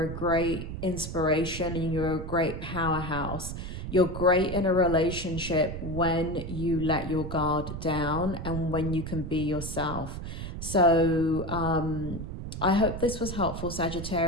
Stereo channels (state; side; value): noise; right; rumble, 7 dB below the sound